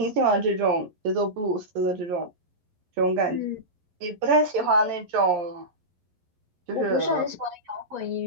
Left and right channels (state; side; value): late; left; 11 ms